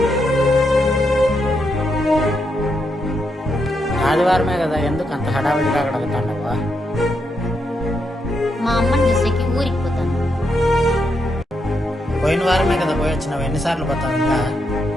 ఆదివారమే కదా, ఎందుకు అంత హడావిడిగా కడుగుతాండవా? మా అమ్మని చూసేకి ఊరికి పోతాను. పోయిన వారమే కదా పోయి వచ్చినావు, ఎన్నిసార్లు పోతావు ఇంకా?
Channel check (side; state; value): both; normal; correlation 0.81